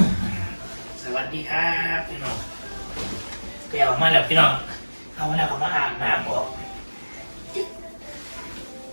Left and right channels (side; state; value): both; inverted; correlation -1.00